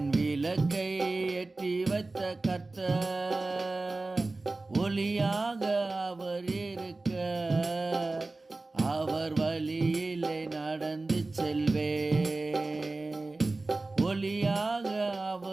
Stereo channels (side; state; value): left; quieter; 3.3 dB